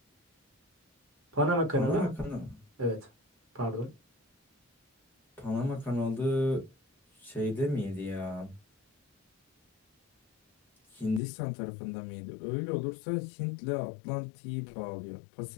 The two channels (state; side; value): drops out; right; at 11.2 s